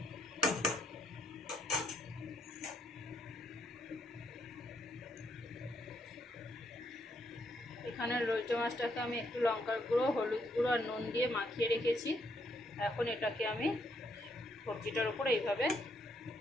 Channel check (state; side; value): normal; both; correlation 0.74